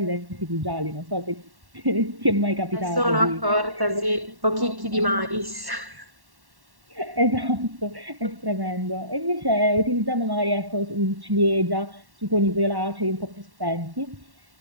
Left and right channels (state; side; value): late; left; 1.1 ms